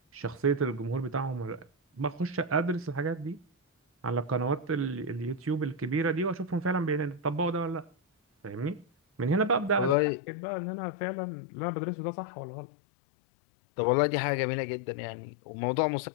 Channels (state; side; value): drops out; right; at 10.0 s